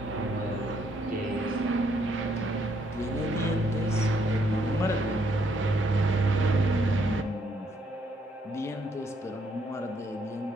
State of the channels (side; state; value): both; normal; correlation 0.71